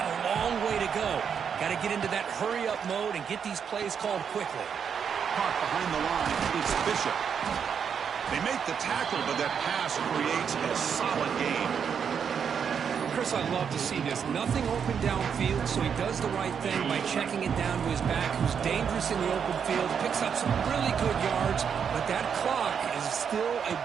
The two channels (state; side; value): quieter; left; 7.2 dB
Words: a long way to go. Got to get into that hurry-up mode and get these plays called quickly. Caught behind the line. It's Bishop. They make the tackle, but that pass creates a solid gain. Chris, I love to see this. Nothing open downfield, so he does the right thing by checking it down to his back, who's dangerous in the open field, picks up some really good yards, but that clock is still a